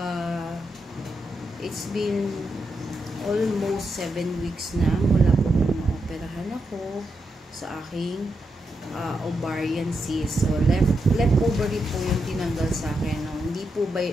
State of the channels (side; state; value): both; normal; correlation 0.84